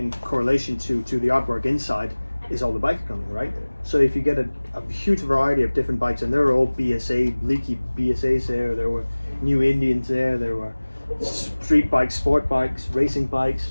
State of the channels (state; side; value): inverted; both; correlation -1.00